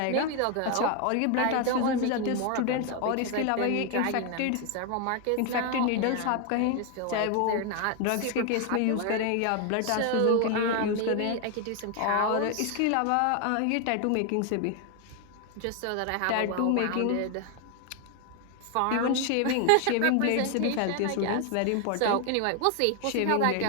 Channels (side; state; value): both; different; correlation 0.01